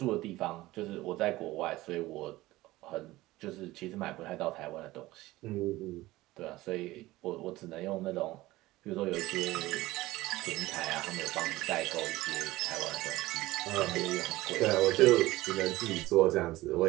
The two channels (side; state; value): left; quieter; 18.1 dB